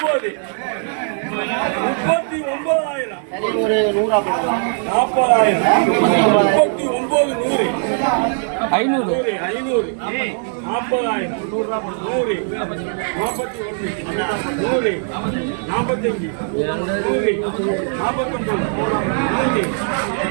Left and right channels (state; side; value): silent; left; 66 dB below the other